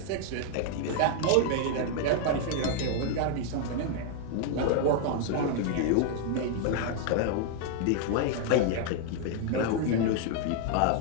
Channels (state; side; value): different; both; correlation 0.00